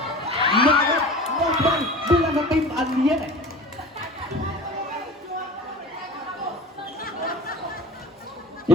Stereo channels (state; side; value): normal; both; correlation 0.38